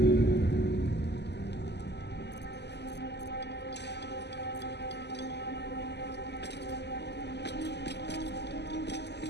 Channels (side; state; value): right; late; 0.50 ms